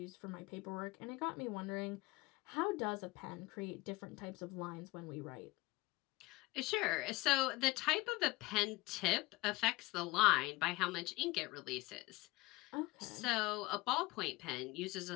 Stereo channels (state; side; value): quieter; right; 21.2 dB